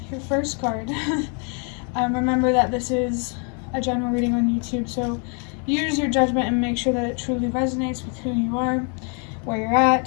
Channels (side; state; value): right; quieter; 38.7 dB